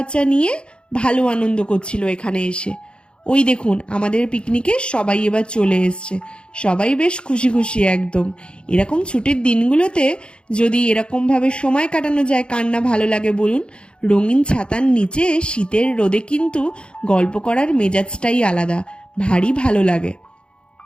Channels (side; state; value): right; late; 0.054 ms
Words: নিয়ে ভালো আনন্দ করছিল এখানে এসে। ওই দেখুন, আমাদের পিকনিকে সবাই এবার চলে এসছে। সবাই বেশ খুশি খুশি একদম। এরকম ছুটির দিনগুলোতে যদি এরকমভাবে সময় কাটানো যায়, কার না ভালো লাগে বলুন। রঙিন ছাতার নিচে শীতের রোদে কিন্তু গল্প করার মেজাজটাই আলাদা, ভারী ভালো লাগে।